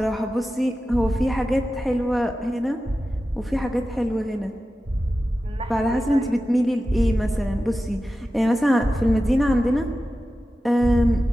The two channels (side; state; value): both; normal; correlation 0.93